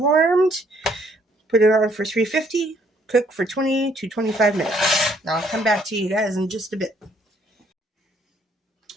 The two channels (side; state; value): both; normal; correlation 0.66